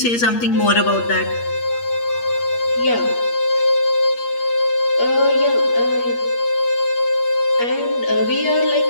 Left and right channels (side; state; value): right; late; 8.5 ms